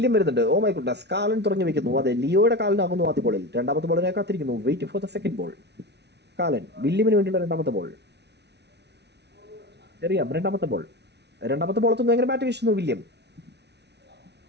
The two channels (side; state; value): left; late; 0.50 ms